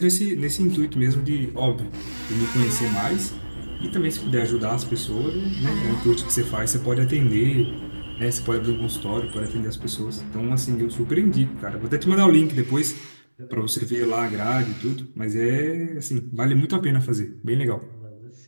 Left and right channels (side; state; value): both; inverted; correlation -1.00